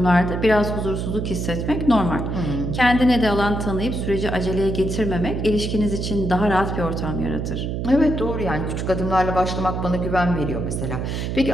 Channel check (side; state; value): right; noise; hum, 3 dB below the sound